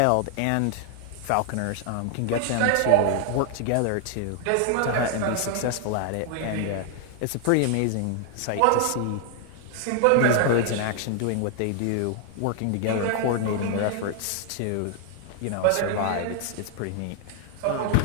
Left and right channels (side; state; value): both; different; correlation 0.00